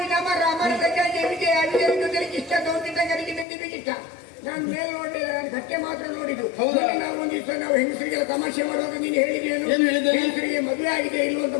ಮರ. ಮರದ ಕೆಳಗೆ ಇಷ್ಟ ಗೌಂಡಿಟ್ಟಂಗರಿಗೆ ನಿಂತಿಬೇಕಿತ್ತ. ನಾನು ಮೇಲೆ ನೋಡಿದೆ, ನಾನು ಕಟ್ಟೆ ಮಾತ್ರ ನೋಡಿದ್ದು. ನಾವು ಒಂದಿವ್ಸ ನಾವು ಹೆಂಗಸರಿಗೆಲ್ಲ ತಮಾಷೆ ಮಾಡುವಾಗ ನೀನು ಹೇಳಿದೇನು? ಹೆಂಗಸರಿಗೆ ಮದುವೆ ಆಗಿದೆ ಇಲ್ವ ಅಂತ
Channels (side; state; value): right; drops out; at 3.5 s